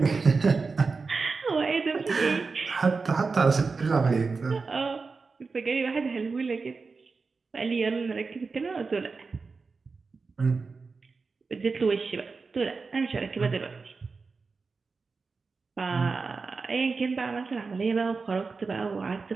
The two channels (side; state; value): left; quieter; 4.4 dB